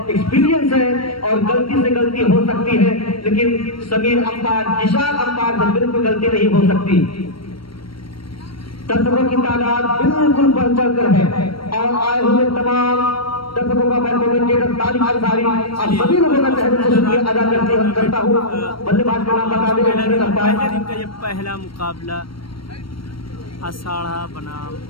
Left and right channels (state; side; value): late; right; 0.74 ms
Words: एक्सपीरियंस है और गलती से गलती हो सकती है, लेकिन समीर अंपायर, जीशा अंपायर से बिल्कुल गलती नहीं हो सकती। दर्शकों की तादाद बिल्कुल बढ़ चढ़कर है और आए हुए तमाम दर्शकों का मैं कमेंटेटर तारिक अंसारी और सभी लोगों का तहे से शुक्रिया अदा करता हूँ। बल्लेबाज का नाम बता दें। ये पहला मुकाबला अषाढ़ा बनाम